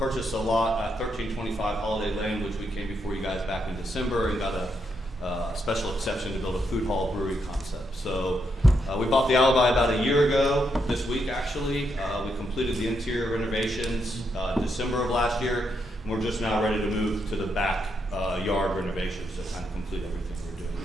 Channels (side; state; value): both; normal; correlation 0.80